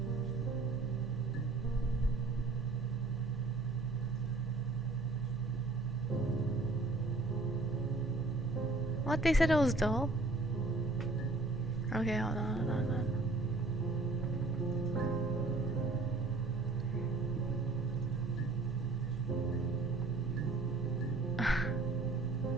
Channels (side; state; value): left; quieter; 3.1 dB